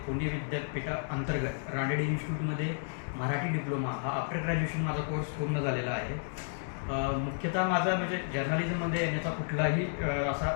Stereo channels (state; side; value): silent; right; digital silence